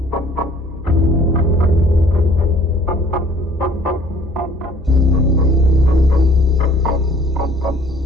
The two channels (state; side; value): noise; right; hum, 15 dB below the sound